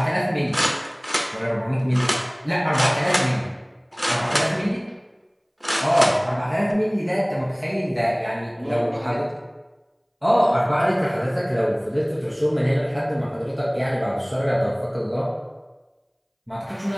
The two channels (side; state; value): both; identical; correlation 1.00